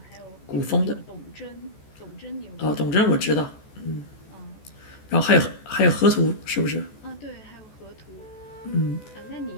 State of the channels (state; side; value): late; right; 14 ms